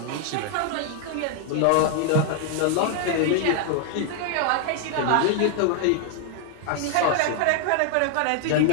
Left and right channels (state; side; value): different; both; correlation 0.00